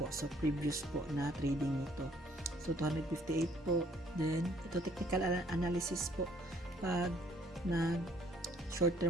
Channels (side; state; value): both; normal; correlation 0.62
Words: po. So, previous po na trading nito. So, 258 po. Then, ito technical analysis po. Pag short